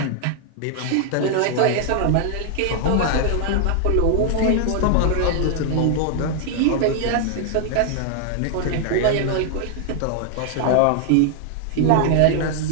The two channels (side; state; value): both; different; correlation 0.00